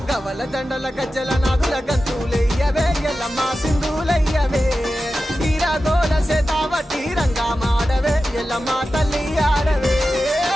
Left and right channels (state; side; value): normal; both; correlation 0.93